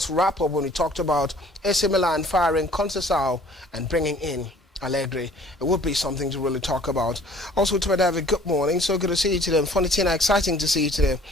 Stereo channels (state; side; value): normal; both; correlation 0.53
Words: Wrap-Up when we talked about AC Milan firing Conceição and bringing in Allegri. It would be something to really talk about. Also, to David, good morning. So good to see you today. Funny Tina, exciting to see you today.